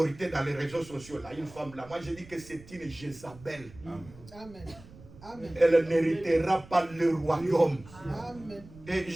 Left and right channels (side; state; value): right; noise; rumble, 20 dB below the sound